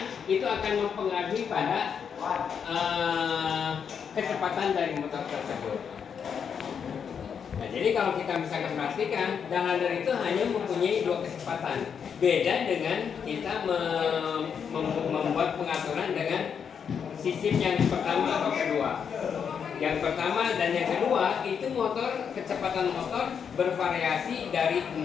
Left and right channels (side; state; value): right; quieter; 7.1 dB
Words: itu akan mempengaruhi pada kecepatan dari motor tersebut. Nah, jadi kalau kita bisa perhatikan, dalander itu hanya mempunyai 2 kecepatan. Beda dengan kita membuat pengaturan dengan sistem yang pertama atau kedua. Yang pertama dan yang kedua itu kecepatan motor bervariasi dari 0,